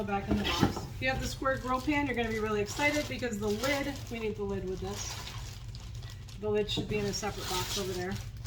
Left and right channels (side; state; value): both; identical; correlation 1.00